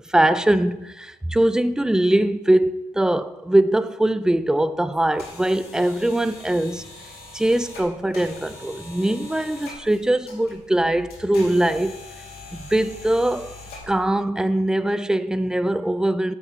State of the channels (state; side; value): normal; both; correlation 0.96